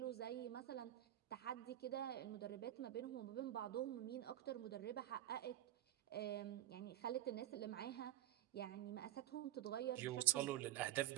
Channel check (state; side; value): quieter; left; 13.3 dB